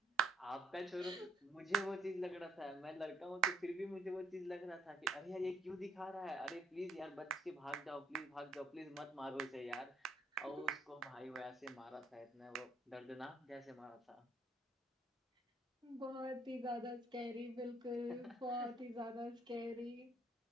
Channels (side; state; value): both; normal; correlation 0.67